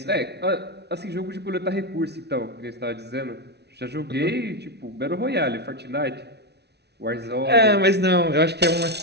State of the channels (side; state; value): left; late; 0.49 ms